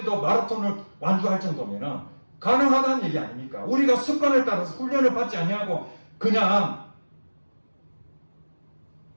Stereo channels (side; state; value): both; inverted; correlation -1.00